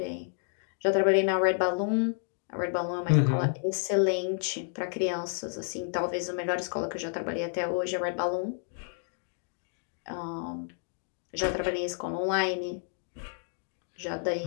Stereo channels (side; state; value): right; silent; digital silence